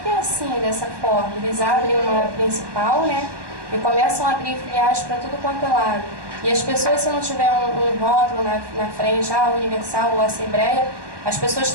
é assim, dessa forma. Eles abrem uma principal, né? E começam a abrir filiais para tudo quanto é lado. E as pessoas, se não tiver um rótulo na frente, Universal ou Assembleia, as pessoas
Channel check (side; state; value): left; late; 1.1 ms